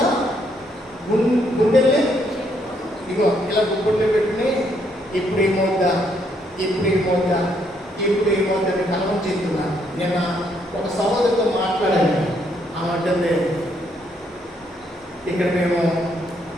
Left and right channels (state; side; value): normal; both; correlation 0.72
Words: సార్? గుండెల్ని ఇగో ఇలా గుండె పెట్టుకుని ఇప్పుడు ఏమవుద్దా అని కలవం చెప్తున్నా. నేను ఒక సహోదరితో మాట్లాడాను. ఆమె ఇక్కడ మేము